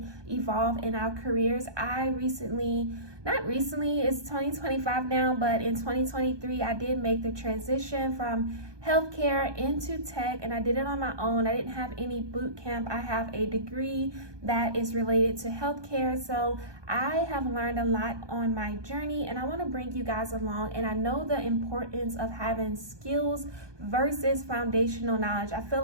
evolve in our careers. Not recently, it's 2025 now, but in 2023, I did make the transition from healthcare into tech, and I did it on my own. I didn't have any boot camp. I have a degree that is related to healthcare, so I have learned a lot on my journey, and I want to bring you guys along. And I know the importance of having skills versus foundational knowledge. I feel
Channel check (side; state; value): left; late; 1.2 ms